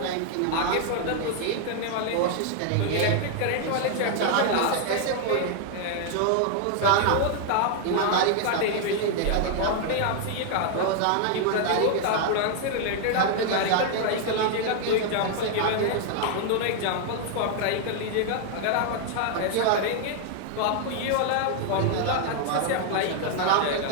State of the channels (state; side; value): different; both; correlation 0.00